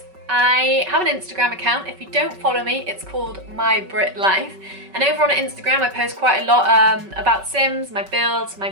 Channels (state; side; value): late; left; 5.3 ms